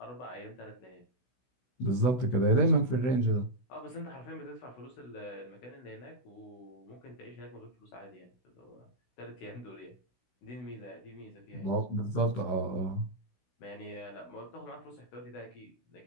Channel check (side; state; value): right; late; 16 ms